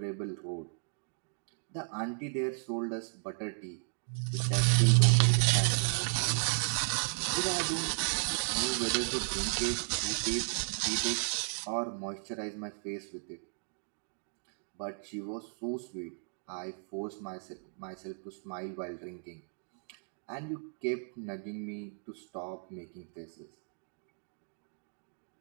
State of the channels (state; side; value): silent; left; digital silence